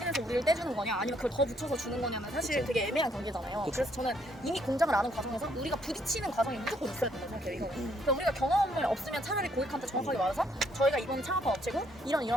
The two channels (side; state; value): both; normal; correlation 0.70